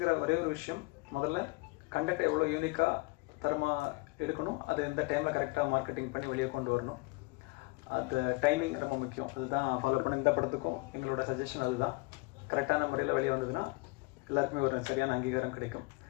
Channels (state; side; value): quieter; right; 25.7 dB